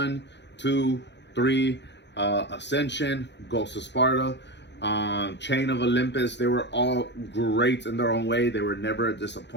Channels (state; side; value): late; right; 0.51 ms